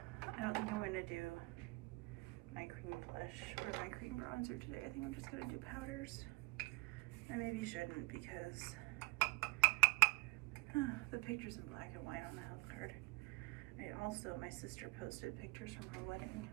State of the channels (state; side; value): quieter; left; 24.3 dB